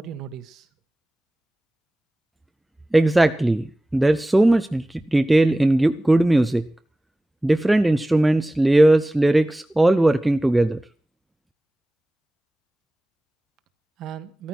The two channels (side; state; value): both; normal; correlation 0.98